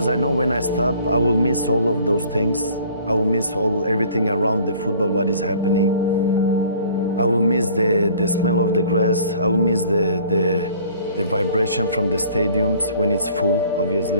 I know when I stop, I will miss all of those things. I will miss everything around the football, what is happening. I will miss the smell of the grass. I will miss the vibration from the stadiums when it's full,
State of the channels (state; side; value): inverted; both; correlation -0.52